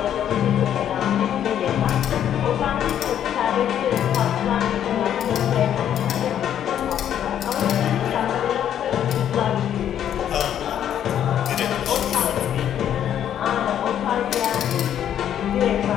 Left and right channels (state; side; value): quieter; right; 10.0 dB